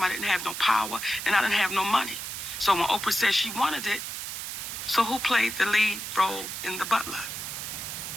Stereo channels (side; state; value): right; noise; hiss, 6 dB below the sound